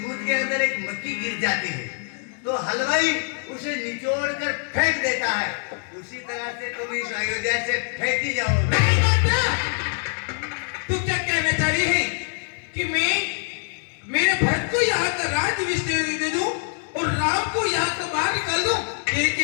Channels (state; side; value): silent; right; 57 dB below the other